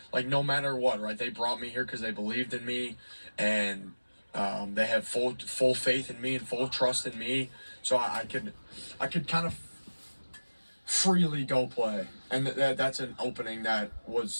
like, no matter what, right? They brought me here because they believed in me, and they had full faith in me and full trust in me, so I could kind of freely go play, and that's an opening that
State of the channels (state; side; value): inverted; both; correlation -1.00